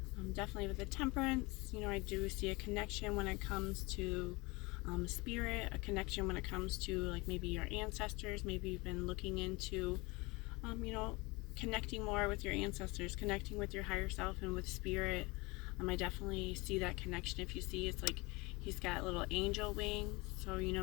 Definitely with the Temperance, I do see a connection when it comes to spirit, a connection when it comes to like maybe your ancestors. Maybe you've been looking into, connecting more with your ancestors, connecting with your higher self and with spirit. I definitely see that connection. If you see, it's like he's got little angel wings. So,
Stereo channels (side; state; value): right; quieter; 24.9 dB